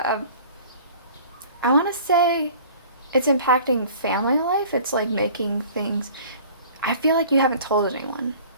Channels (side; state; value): both; inverted; correlation -0.47